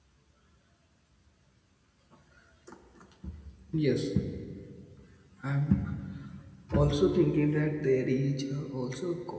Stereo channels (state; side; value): identical; both; correlation 1.00